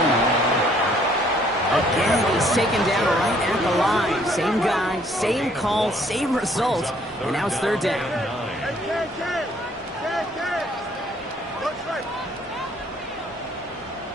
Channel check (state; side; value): normal; both; correlation 0.63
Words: Again, he's taken down right at the line. Same guy, same call, same result, and now it's 3rd down.